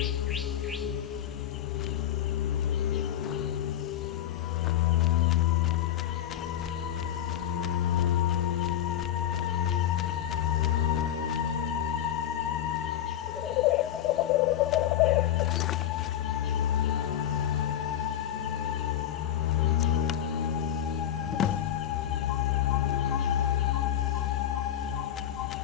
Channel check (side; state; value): right; quieter; 10.9 dB